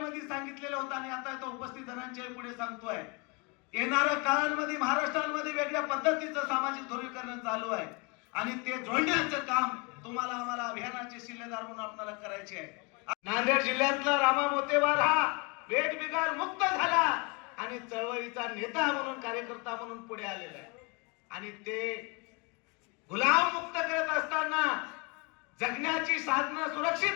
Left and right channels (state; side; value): quieter; right; 30.0 dB